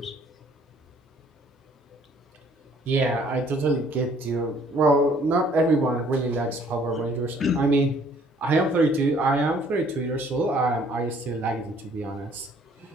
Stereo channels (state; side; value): normal; both; correlation 0.59